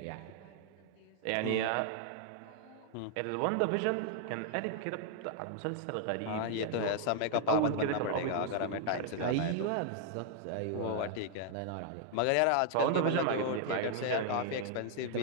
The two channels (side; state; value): both; different; correlation -0.01